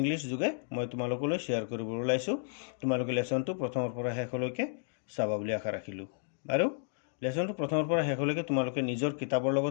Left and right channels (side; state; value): right; silent; digital silence